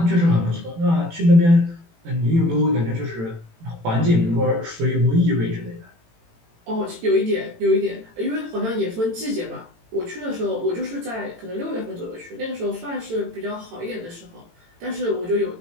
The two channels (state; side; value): late; left; 18 ms